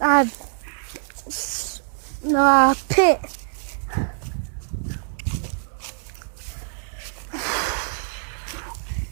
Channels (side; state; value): left; silent; 62 dB below the other